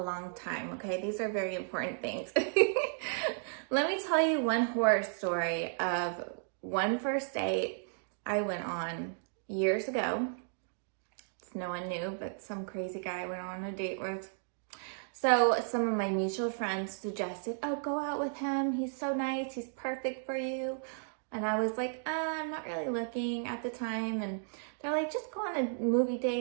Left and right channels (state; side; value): silent; left; digital silence